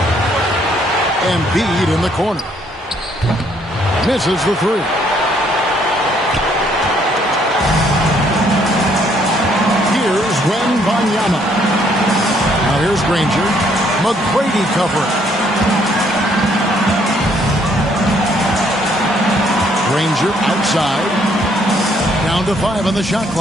Embiid in the corner. Misses the three. Here's Wembanyama. Now here's Granger. McGrady covering. Granger outside. Down to 5 on the shot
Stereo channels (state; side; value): normal; both; correlation 0.67